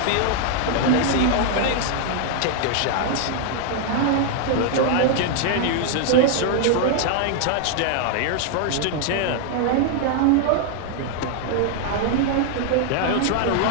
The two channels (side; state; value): both; different; correlation 0.00